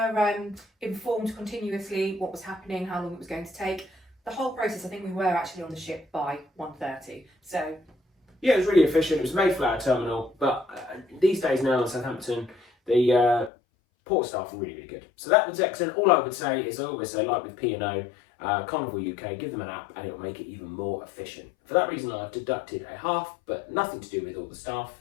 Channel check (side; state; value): right; drops out; at 13.5 s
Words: informed continuously what was happening, how long it was going to take. The whole process, I think we were actually on the ship by 1:30. So yeah, it was really efficient. It was made for our terminal, but these days now in Southampton, the port staff are really, really good. So that was excellent. All I would say is, I always say, like with P&O, Carnival UK, give them an app and it will make it even more efficient. For that reason, I've deducted a half, but nothing to do with all the staff